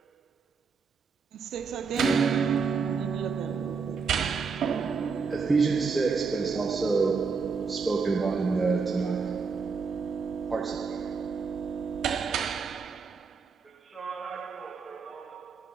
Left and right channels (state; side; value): quieter; left; 5.2 dB